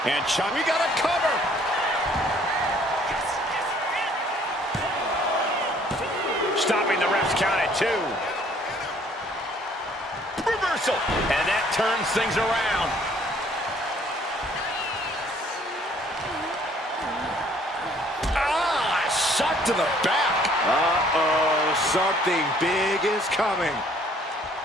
And we got a cover. Stopping the ref's count at 2. Reversal. And that turns things around. to the back. Uh-oh, something big is coming.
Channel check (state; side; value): normal; both; correlation 0.60